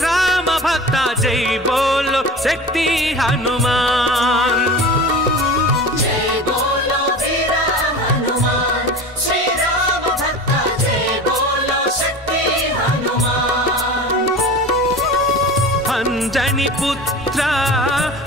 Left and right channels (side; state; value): both; normal; correlation 0.34